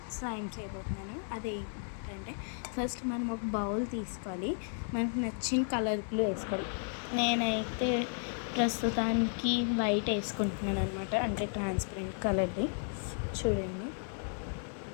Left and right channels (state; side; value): silent; right; 55 dB below the other